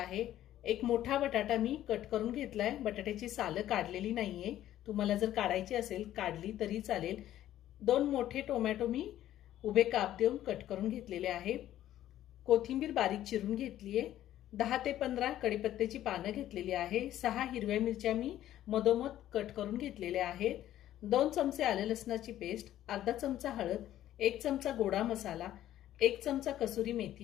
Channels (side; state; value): right; quieter; 12.7 dB